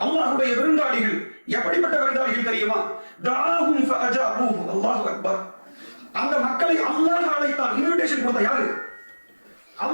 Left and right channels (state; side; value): inverted; both; correlation -1.00